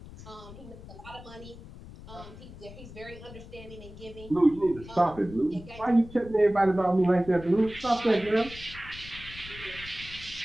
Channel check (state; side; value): noise; left; rumble, 16 dB below the sound